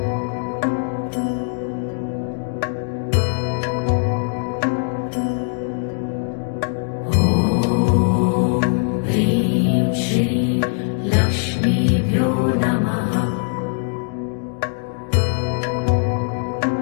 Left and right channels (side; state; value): right; silent; 65 dB below the other